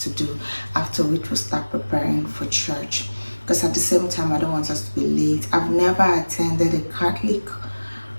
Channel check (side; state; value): both; inverted; correlation -1.00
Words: do, after which we'll start preparing for church. Because at the same time, I don't want us to be late. I've never attended a Catholic